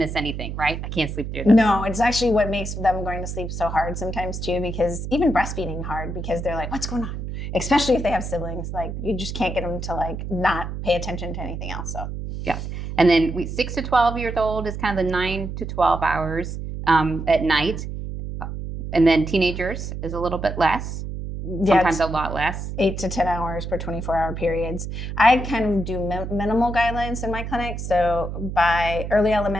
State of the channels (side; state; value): right; noise; hum, 6 dB below the sound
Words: anything, right? I can't sleep through this. No, it's actually what makes them going to sleep so hard sometimes too, because even breastfeeding hard because they're like, what's going on? Especially if they have siblings, you just can't get them to not pay attention to anything else. So yes, and then 6 to 12 years old is kind of the 9 to 12 hours at night, and then teenagers is a little bit less. Sometimes a lot less. 8 to 10 hours per 24-hour periods. I kind of do minimal guidelines in my clinic. So by early